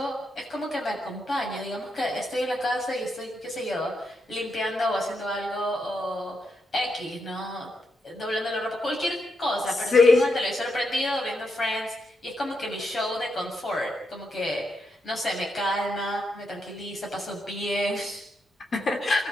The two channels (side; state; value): both; normal; correlation 0.83